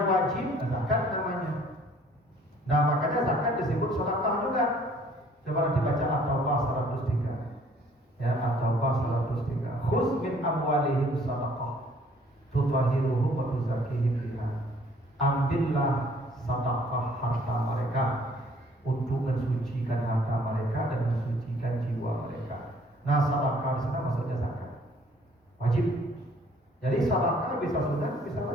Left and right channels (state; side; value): normal; both; correlation 0.58